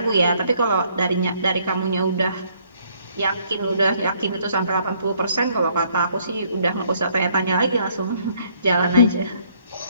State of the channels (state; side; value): inverted; both; correlation -0.66